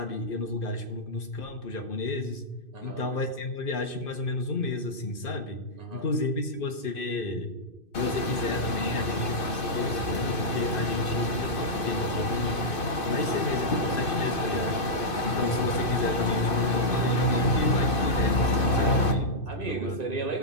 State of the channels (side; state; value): right; late; 2.6 ms